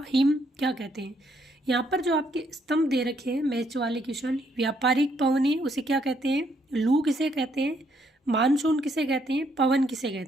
हिम क्या कहते हैं? यहाँ पर जो आपके स्तंभ दे रखे हैं मैच वाले क्वेश्चन, व्यापारिक पवनी उसे क्या कहते हैं? लू किसे कहते हैं? मानसून किसे कहते हैं? पवन किसे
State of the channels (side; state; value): both; normal; correlation 0.71